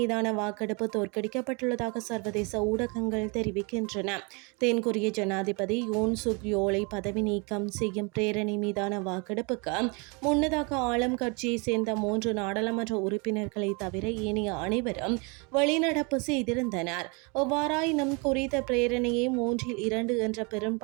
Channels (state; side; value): quieter; left; 31.2 dB